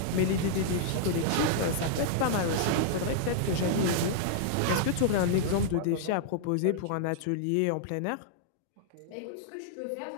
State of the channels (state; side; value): different; both; correlation -0.01